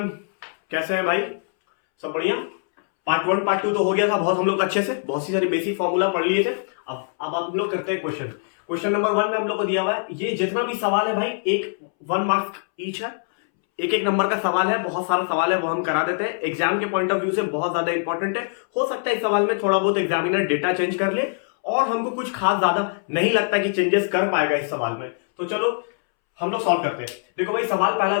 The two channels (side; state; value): right; silent; 63 dB below the other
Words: कैसे हैं भाई? सब बढ़िया। पार्ट 1 पार्ट 2 तो हो गया था बहुत, हम लोग अच्छे से बहुत सी सारी बेसिक फॉर्मूला पढ़ लिए थे। अब आप लोग करते हैं क्वेश्चन नंबर 1 में हम लोग को दिया हुआ है। ये जितना भी सवाल है भाई, एक 1 मार्क ईच है, एक एक नंबर का सवाल है, बहुत सारा सवाल है, वो हम करा देते हैं। एग्जाम के पॉइंट ऑफ व्यू से बहुत ज्यादा इंपॉर्टेंट है। हो सकता है इस सवाल में थोड़ा बहुत एग्जामिनर डेटा चेंज कर ले, और हमको कुछ खास ज्यादा नहीं लगता कि चेंजेस कर पाएगा इस सवाल में। तो चलो हम लोग सॉल्व करते हैं। देखो भाई, सवाल पहला